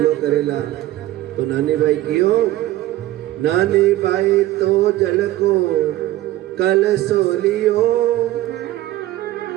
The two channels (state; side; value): quieter; left; 15.6 dB